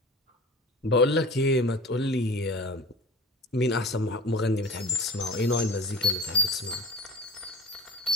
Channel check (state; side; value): normal; both; correlation 0.38